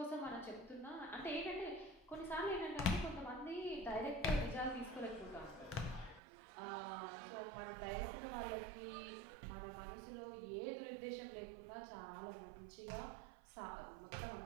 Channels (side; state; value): left; drops out; at 6.2 s